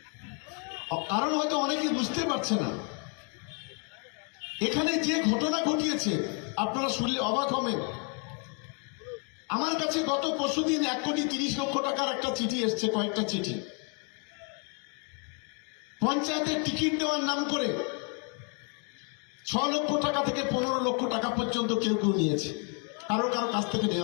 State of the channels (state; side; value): quieter; right; 38.9 dB